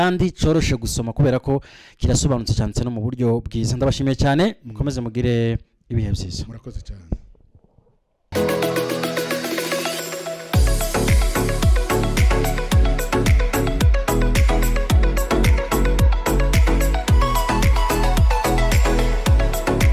coroshe gusoma kubera ko kirasobanutse cyane no mu buryo bwiza ndabashimiye cyane mukomeze mugire ibihe byiza murakoze cyane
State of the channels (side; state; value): both; identical; correlation 1.00